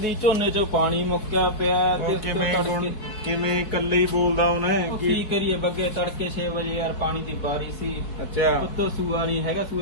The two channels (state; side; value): late; right; 4.7 ms